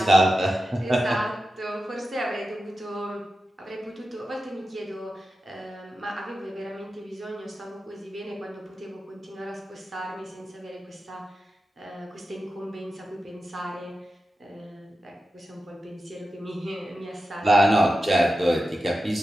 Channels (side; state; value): both; normal; correlation 0.92